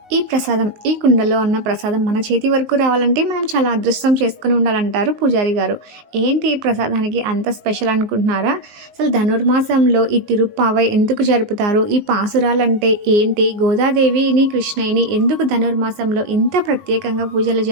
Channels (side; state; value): left; late; 19 ms